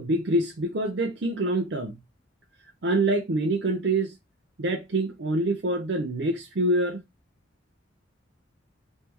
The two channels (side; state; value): both; normal; correlation 0.22